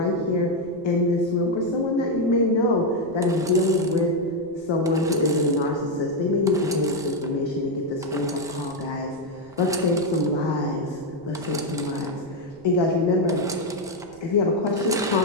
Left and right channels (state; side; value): noise; right; rumble, 26 dB below the sound